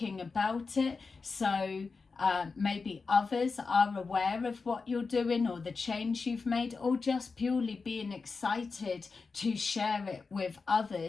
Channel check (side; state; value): right; quieter; 4.5 dB